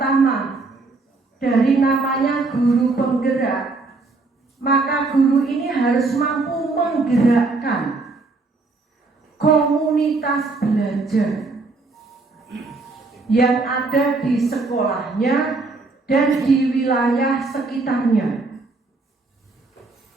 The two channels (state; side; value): quieter; left; 3.6 dB